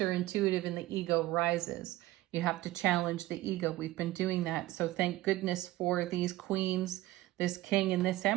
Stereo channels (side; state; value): left; quieter; 16.9 dB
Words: and the ego rises. You have to challenge the ego. We've been doing that. So thank goodness for these queens, this king, and this